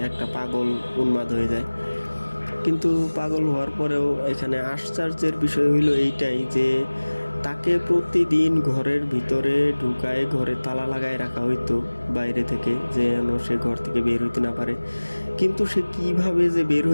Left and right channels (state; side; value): inverted; both; correlation -1.00